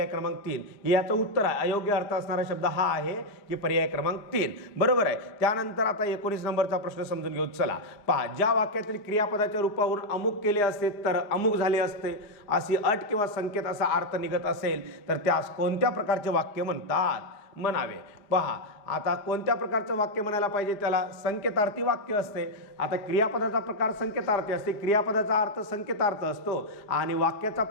क्रमांक 3 याचं उत्तर आहे. अयोग्य अर्थ असणारा शब्द हा आहे की पर्याय क्रमांक 3 बरोबर आहे. त्यानंतर आता 19 नंबरचा प्रश्न समजून घेऊ. चला पहा, ज्या वाक्यातील क्रियापदाच्या रूपावरून अमुक केले असते तर अमुक झाले असते अशी अट किंवा संकेत असा अर्थ निघत असेल तर त्यास कोणत्या प्रकारचे वाक्य म्हणतात? म्हणावे. पहा, आता कोणत्या प्रकारचं वाक्य म्हणायला पाहिजे? त्याला संकेतार्थी वाक्य असते. आता क्रियापदाचा प्रकार संकेतार्थी असते, क्रियापदाचा अर्थ संकेतार्थ असतो आणि वाक्याचा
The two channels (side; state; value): right; late; 4.9 ms